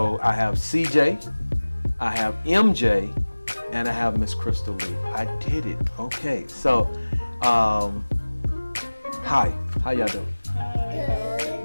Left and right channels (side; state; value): both; inverted; correlation -1.00